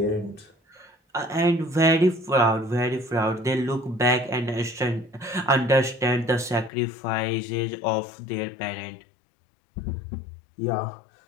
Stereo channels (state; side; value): drops out; right; at 6.7 s